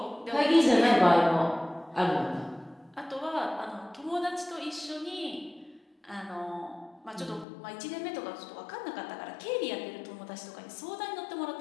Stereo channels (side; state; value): right; drops out; at 7.5 s